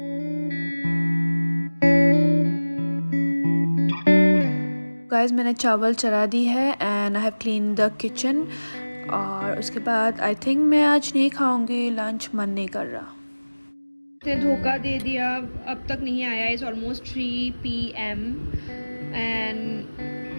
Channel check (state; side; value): inverted; both; correlation -1.00